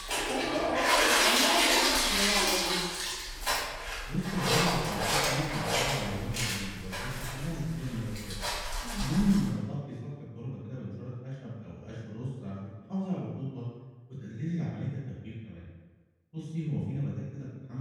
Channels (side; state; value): both; identical; correlation 1.00